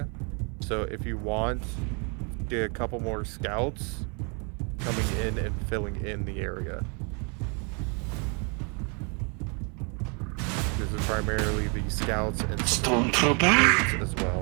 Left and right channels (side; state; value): left; quieter; 35.6 dB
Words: So if you want, get a couple more scouts coming in and filling in the area. This is primarily the scouts and Stormtrooper as